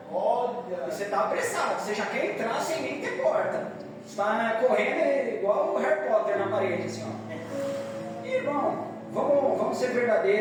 Olha. E você está apressado, você já quer entrar sem nem ter porta. Está correndo igual o Harry Potter na parede, assim, ó. E, irmão, vamos ser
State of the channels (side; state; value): both; identical; correlation 1.00